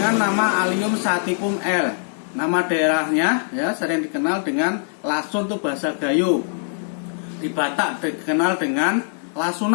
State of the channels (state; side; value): silent; right; 55 dB below the other